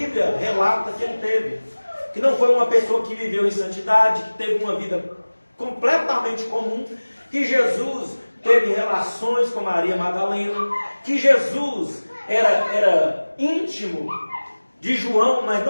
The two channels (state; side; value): inverted; both; correlation -1.00